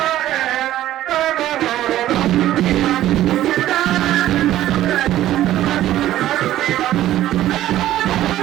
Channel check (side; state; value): left; quieter; 13.6 dB